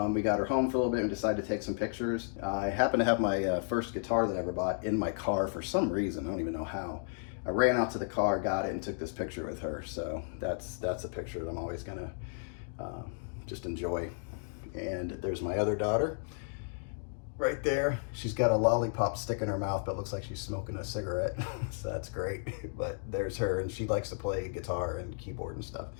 we got her home for a little bit and decided to take some pictures. I happen to have my first guitar that I ever bought in my car for some reason. I don't even know how. I ran out to the car, got it, and took this picture with her. So that's a picture that I'm always gonna just enjoy. And there's my other daughter. Right there, she's got a lollipop stick in her mouth, but looks like she's smoking a cigarette. So that's great. But there's her, and she likes to play guitar and keyboard and stuff.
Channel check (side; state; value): right; silent; digital silence